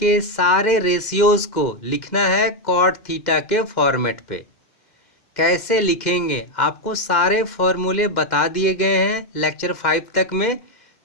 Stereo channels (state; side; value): late; right; 2.1 ms